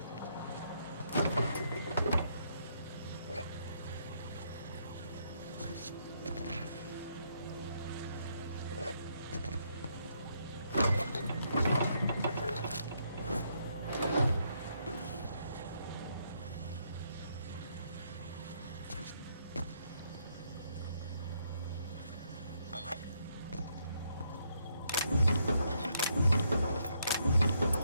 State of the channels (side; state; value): both; inverted; correlation -0.74